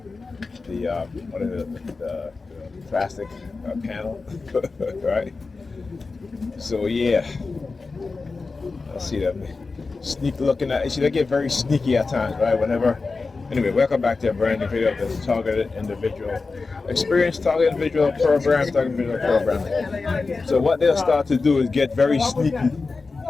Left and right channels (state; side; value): quieter; right; 4.1 dB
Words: what is it, the plastic panel, right? So yeah, I see them sneak looking at. See, they get very sneaky at times, right? Whenever. Anyway, welcome back to a brand new video of this targeted individual experience, targeted individual program, targeted individual programming. So what they'll start to do is get very sneaky,